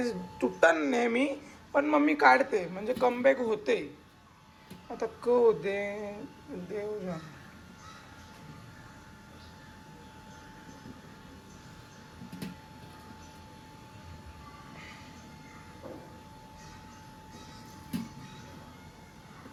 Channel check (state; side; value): identical; both; correlation 1.00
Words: तुटतान नेहमी, पण मम्मी काढते म्हणजे कमबॅक होते. आता होते देव जाण.